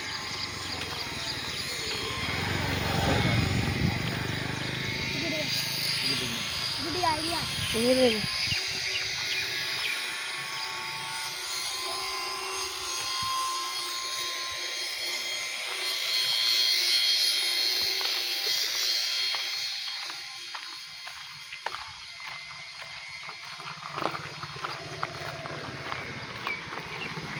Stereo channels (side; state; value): both; identical; correlation 1.00